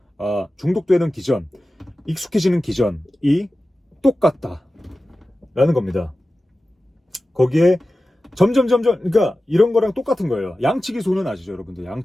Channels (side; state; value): both; normal; correlation 0.95